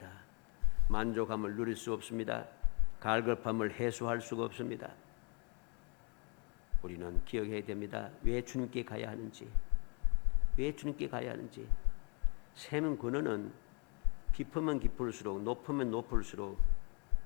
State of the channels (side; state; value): right; quieter; 37.4 dB